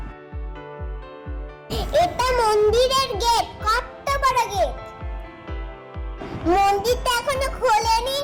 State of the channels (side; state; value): both; identical; correlation 1.00